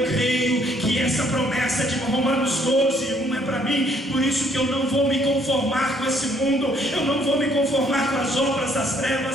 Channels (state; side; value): normal; both; correlation 0.65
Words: creio que essa promessa de Romanos 12:1 é para mim. Por isso que eu não vou me conformar com esse mundo, eu não vou me conformar com as obras das